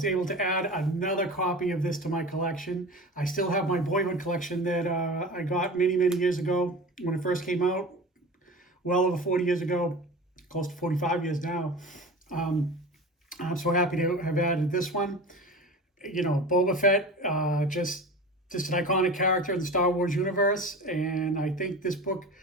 able to add another copy of this to my collection. I still have my boyhood collection that I got many, many years ago when it first came out, well over 40 years ago, close to 45 years now. Um, I'm so happy to have added this one. You know, Boba Fett, just an iconic character in the Star Wars universe, and I think this book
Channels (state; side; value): normal; both; correlation 0.34